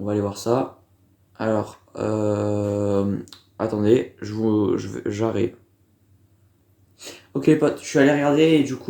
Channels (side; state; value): both; identical; correlation 1.00